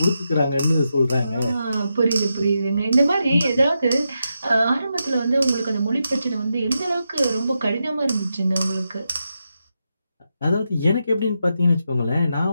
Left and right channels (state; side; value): inverted; both; correlation -0.86